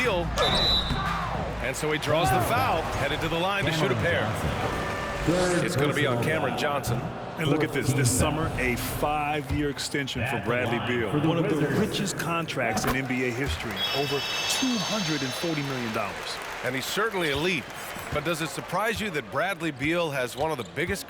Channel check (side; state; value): both; identical; correlation 1.00